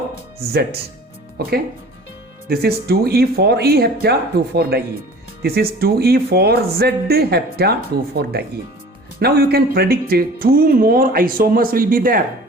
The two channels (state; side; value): normal; both; correlation 0.45